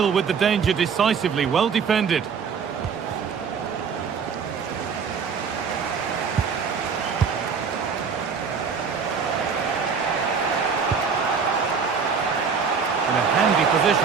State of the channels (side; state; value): left; quieter; 6.0 dB